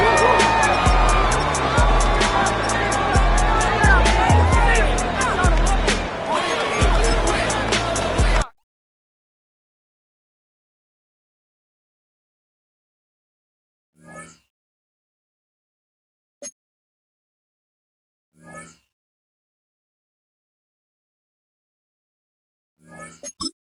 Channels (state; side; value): identical; both; correlation 1.00